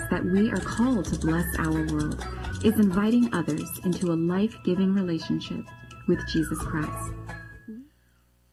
that we are called to bless our world is inviting others into a life-giving relationship with Jesus Christ.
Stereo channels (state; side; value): identical; both; correlation 1.00